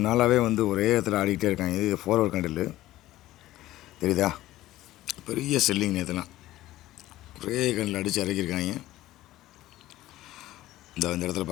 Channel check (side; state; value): right; quieter; 15.7 dB